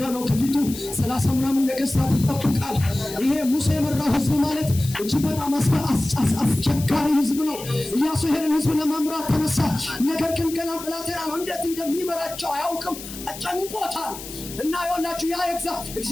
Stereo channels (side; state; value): left; noise; hiss, 12 dB below the sound